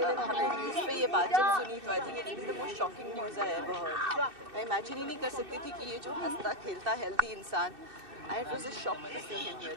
न्यूज़ पे ये बात जब सुनी तो I think it's been the most shocking news I ever heard. मैं इमेजिन ही नहीं कर सकती थी कि ये जो हंसता खेलता हेल्दी इंसान, it was a shock to see him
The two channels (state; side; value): late; left; 2.6 ms